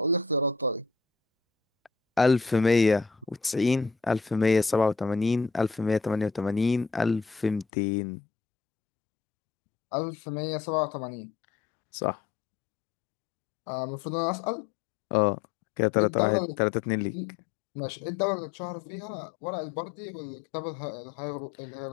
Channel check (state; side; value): drops out; right; at 7.7 s